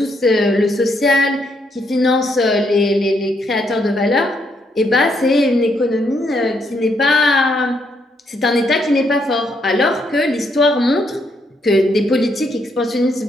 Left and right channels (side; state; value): both; normal; correlation 0.75